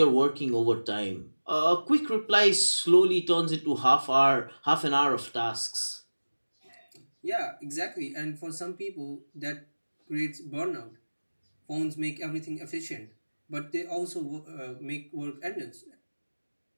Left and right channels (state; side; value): inverted; both; correlation -1.00